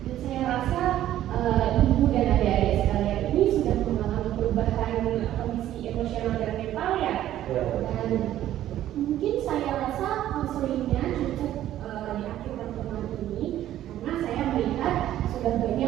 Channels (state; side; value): quieter; left; 12.7 dB